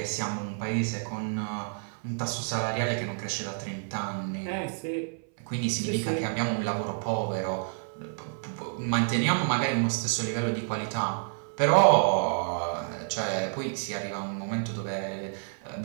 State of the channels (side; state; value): left; silent; 57 dB below the other